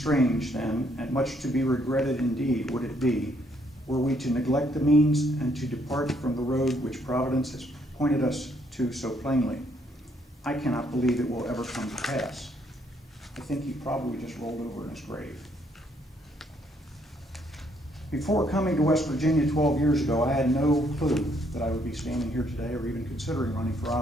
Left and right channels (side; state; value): both; normal; correlation 0.70